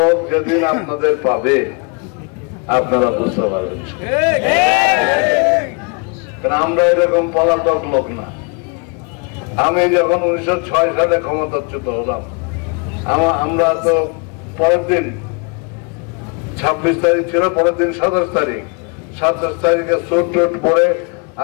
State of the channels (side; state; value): right; quieter; 33.4 dB